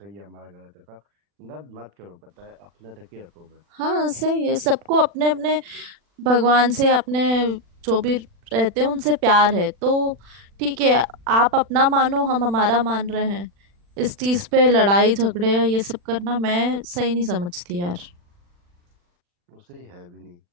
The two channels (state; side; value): late; left; 40 ms